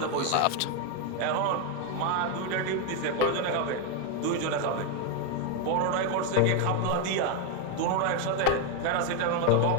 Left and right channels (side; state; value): both; different; correlation 0.01